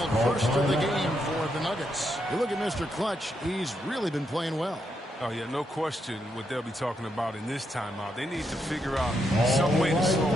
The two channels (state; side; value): normal; both; correlation 0.80